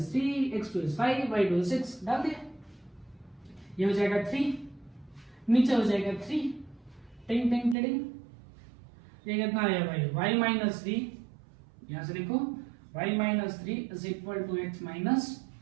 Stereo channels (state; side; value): drops out; left; at 7.8 s